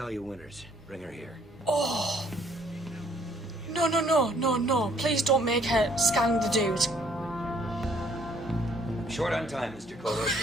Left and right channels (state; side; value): normal; both; correlation 0.63